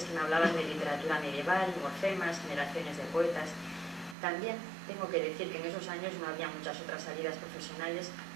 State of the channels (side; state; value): left; drops out; at 4.2 s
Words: que me hablaban de literatura medieval, morfemas, generaciones de poetas. También tengo que decir que en esos años no había muchas otras salidas profesionales